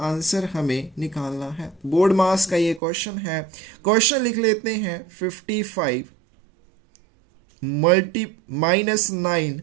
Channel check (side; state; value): left; drops out; at 2.8 s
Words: हमें निकालना है। बोर्ड मास का ये क्वेश्चन है। क्वेश्चन लिख लेते हैं, 55 -9